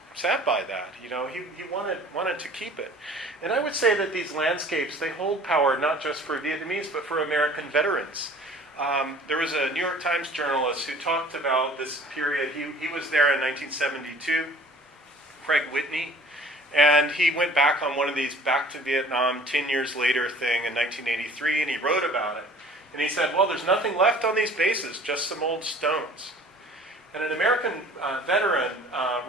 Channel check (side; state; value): both; normal; correlation 0.49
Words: by that. He wanted to keep it. And I would say that these landscapes, they hold power not just for Vietnamese, but for American veterans. There was a New York Times journalist who talked about this period. He was there in 1972, Craig Whitney. And he went back on one of these Back to Vietnam 10 years later thing in 1983, and he wrote about it. And he said, well, there's nothing left on these bases, just some old stones. And an American veteran